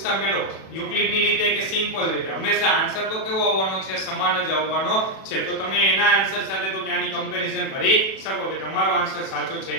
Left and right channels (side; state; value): right; late; 37 ms